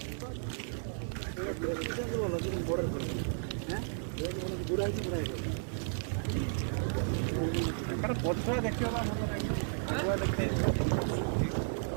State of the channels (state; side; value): silent; left; digital silence